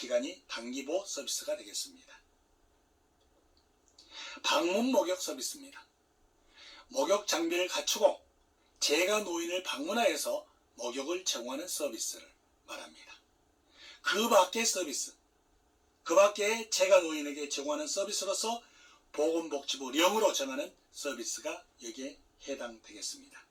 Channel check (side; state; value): both; identical; correlation 1.00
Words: 단기보호 서비스가 되겠습니다. 방문 목욕 서비스입니다. 목욕 장비를 갖추고 재가 노인을 방문하여서 목욕을 제공하는 서비스를 말합니다. 그 밖의 서비스, 그 밖에 재가 노인에게 제공하는 서비스로서 보건복지부령으로 정하는 서비스가 여기에 해당되겠습니다.